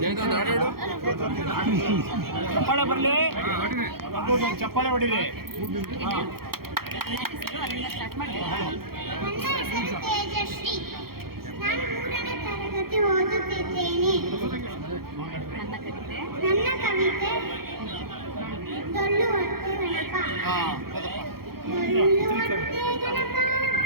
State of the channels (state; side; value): late; left; 0.94 ms